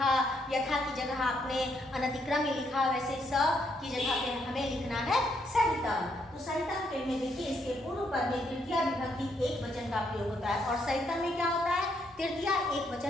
यथा की जगह आपने अनतिक्रम में लिखा, वैसे स की जगह पे हमें लिखना है सहितम। तो सहितम के में देखिए इसके पूर्व पद में तृतीय विभक्ति एक वचन का प्रयोग होता है, और सहितम में क्या होता है? तृतीय एक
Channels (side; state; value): both; normal; correlation 0.74